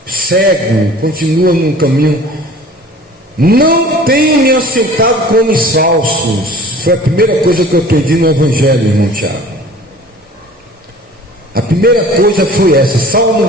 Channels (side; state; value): both; normal; correlation 0.45